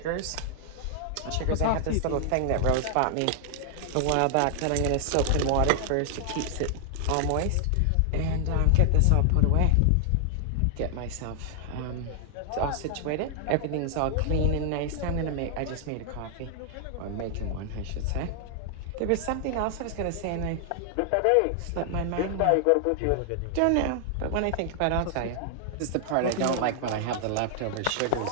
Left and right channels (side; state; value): both; different; correlation 0.00